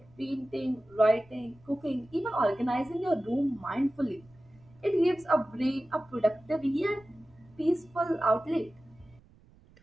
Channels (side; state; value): right; noise; rumble, 27 dB below the sound